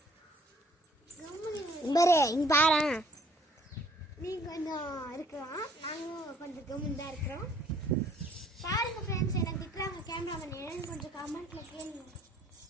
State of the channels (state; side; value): normal; both; correlation 0.60